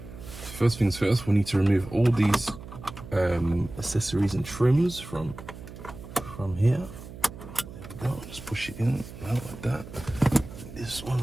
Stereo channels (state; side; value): noise; right; hum, 14 dB below the sound